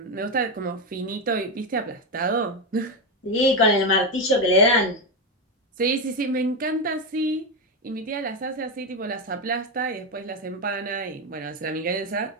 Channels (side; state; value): both; normal; correlation 0.10